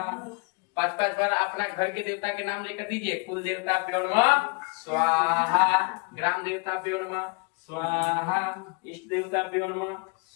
5-5 बार अपना घर के देवता के नाम लेकर दीजिए। कुल देवता प्योण स्वाहा, ग्राम देवता प्योण स्वाहा, इष्ट देवता प्योण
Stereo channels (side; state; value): right; quieter; 31.9 dB